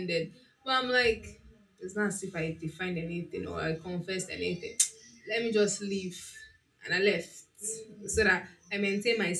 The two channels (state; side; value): identical; both; correlation 1.00